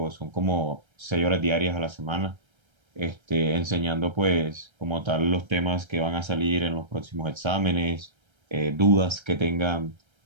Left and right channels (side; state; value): left; late; 1.3 ms